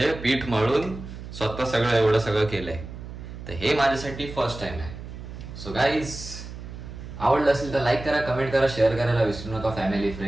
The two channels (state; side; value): noise; right; hum, 11 dB below the sound